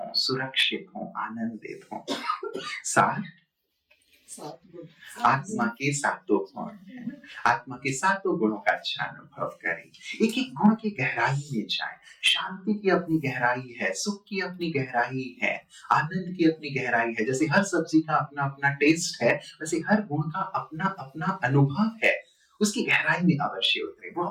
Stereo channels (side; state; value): both; identical; correlation 1.00